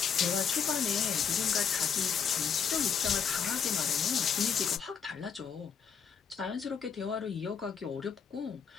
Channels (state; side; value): quieter; right; 6.9 dB